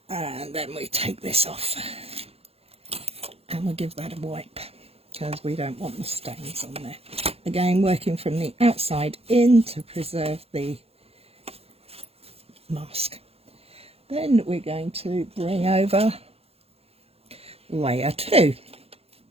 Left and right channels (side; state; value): left; late; 0.29 ms